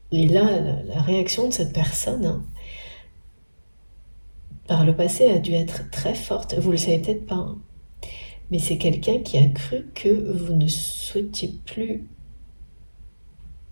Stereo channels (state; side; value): inverted; both; correlation -1.00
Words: et là, la réaction de cette personne, hein, par le passé, a dû être très forte. Vous ne le savez peut-être pas, hein, mais c'est quelqu'un qui a cru que vous ne souhaitiez plus,